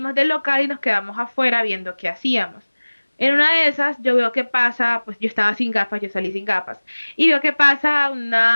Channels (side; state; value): both; inverted; correlation -1.00